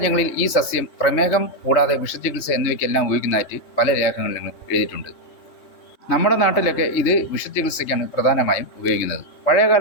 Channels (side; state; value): right; late; 3.2 ms